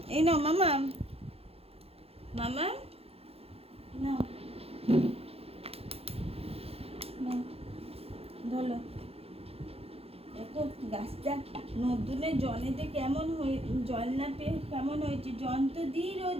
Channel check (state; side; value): late; left; 0.29 ms